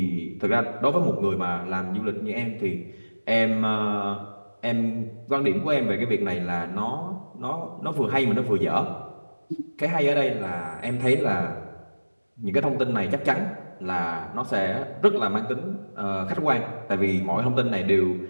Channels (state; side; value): inverted; both; correlation -1.00